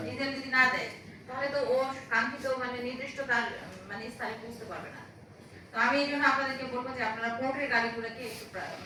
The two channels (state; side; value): identical; both; correlation 1.00